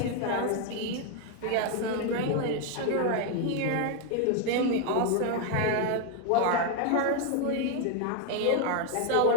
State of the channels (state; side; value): different; both; correlation 0.01